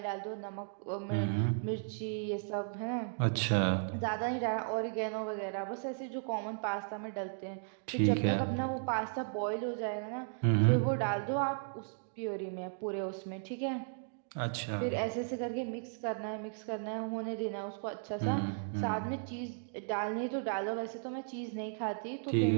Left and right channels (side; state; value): left; silent; digital silence